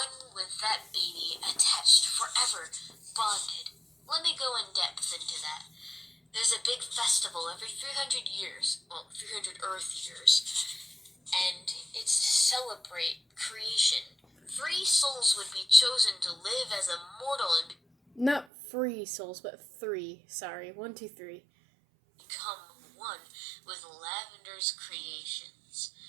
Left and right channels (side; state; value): left; drops out; at 18.4 s